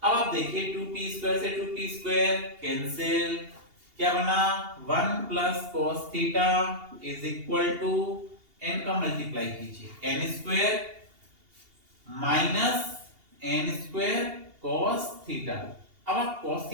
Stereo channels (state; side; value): late; left; 2.8 ms